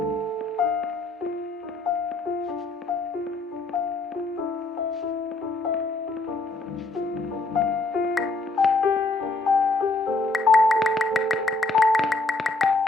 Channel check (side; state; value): right; quieter; 3.3 dB